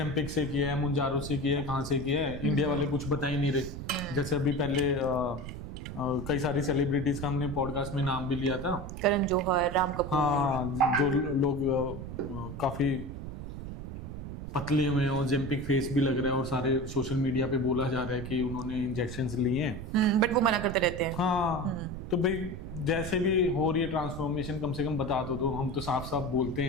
से किया है, मुंजारो से किया है, कहाँ से किया है। इंडिया वाले कुछ बता ही नहीं रहे। जैसे अभी पहले कई सारी सेलिब्रिटीज का हमने पॉडकास्ट में नाम भी लिया था, करण जौहर, राम कपूर। हाँ, जो लोग काफी पतले हुए हैं, ओजेम्पिक फेस भी लग रहा है, और सारे सोशल मीडिया पे बोला जा रहा है कि उन्होंने इंजेक्शंस लिए हैं, बट वो मना करते रहते हैं। हाँ, तो भाई जैसे भी हो रही है ट्रांसफॉर्मेशन, कम से कम बता दो। हम तो साफ साफ बोलते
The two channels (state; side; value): noise; right; rumble, 8 dB below the sound